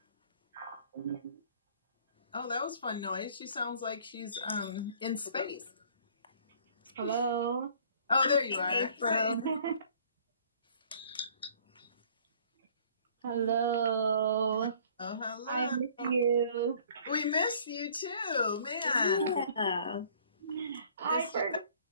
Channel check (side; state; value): both; inverted; correlation -0.55